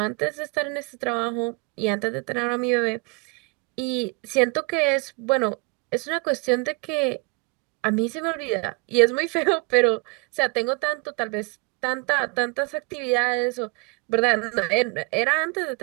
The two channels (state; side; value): quieter; left; 30.0 dB